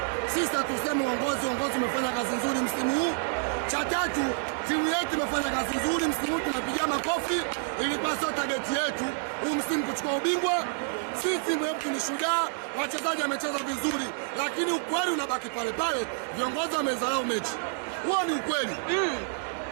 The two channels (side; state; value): left; silent; 59 dB below the other